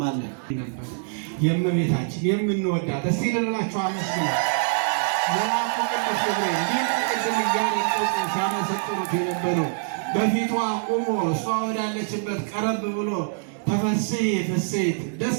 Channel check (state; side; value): silent; left; digital silence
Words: የእመቤታችን የምንወዳት እስቲ ልላችሁ አመስግኑ። መልአኩ ቅዱስ ገብርኤል እንዲህ ቅድም እያነጠቁ ሲያመሰጥሩት የነበረው በፊቷ ቆሞ እሷ ወዳለችበት ቀረብ ብሎ ተፈሥሒ ፍሥሕት ደስ